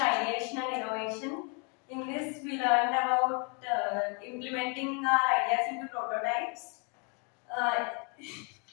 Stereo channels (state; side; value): quieter; right; 35.1 dB